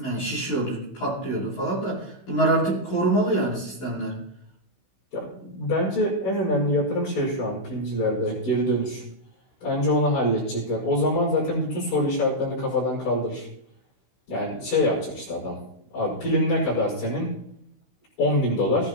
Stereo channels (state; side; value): late; right; 16 ms